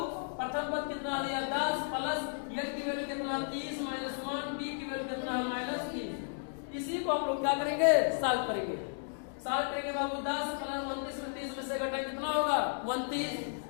प्रथम पद कितना दिया, 10 प्लस n की वैल्यू कितना, 30 माइनस 1, d की वैल्यू कितना है, -3। इसी को हम लोग क्या करेंगे, सॉल्व करेंगे। सॉल्व करेंगे बाबू, 10 प्लस 29 में 30 में से घटाएंगे कितना होगा,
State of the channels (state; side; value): silent; right; digital silence